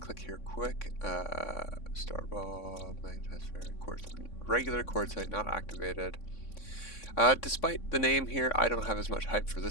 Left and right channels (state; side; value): late; right; 3.6 ms